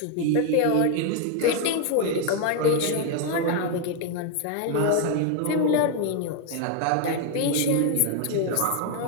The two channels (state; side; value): different; both; correlation 0.01